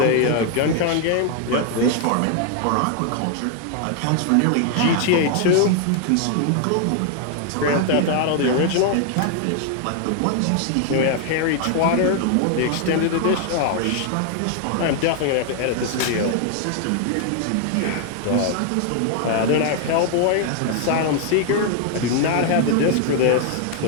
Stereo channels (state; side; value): different; both; correlation 0.00